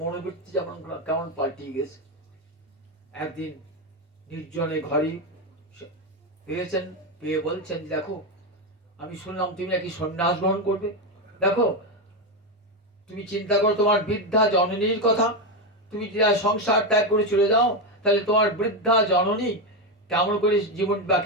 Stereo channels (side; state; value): both; normal; correlation 0.10